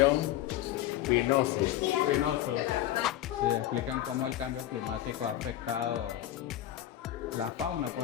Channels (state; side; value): quieter; right; 13.1 dB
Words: spinosus. Espinosos. Sí, explican cómo el cambio climático ha afectado la fauna,